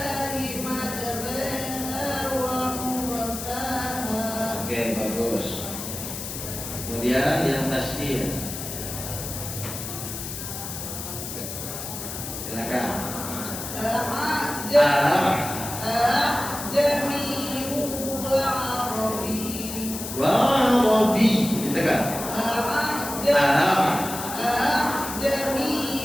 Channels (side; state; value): left; noise; hiss, 7 dB below the sound